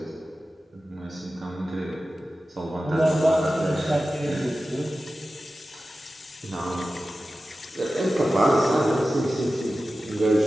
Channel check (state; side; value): normal; both; correlation 0.94